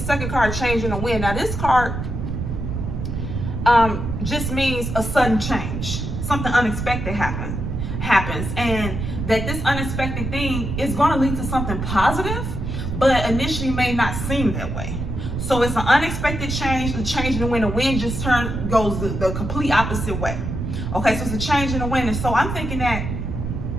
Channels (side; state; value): right; noise; rumble, 4 dB below the sound